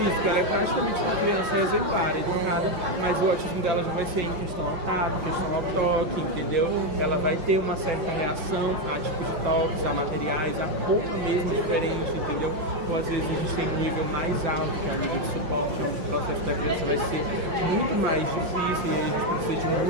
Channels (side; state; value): left; late; 5.6 ms